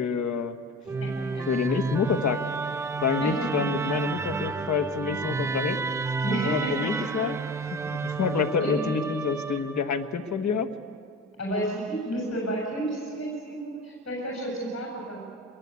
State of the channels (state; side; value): normal; both; correlation 0.34